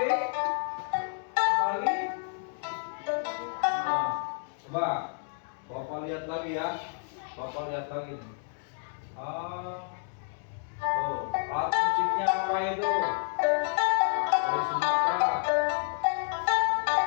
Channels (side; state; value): right; silent; 58 dB below the other